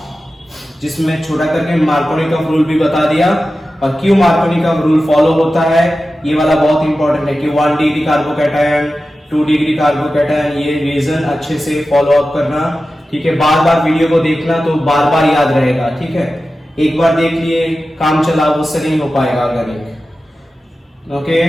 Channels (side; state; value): both; normal; correlation 0.94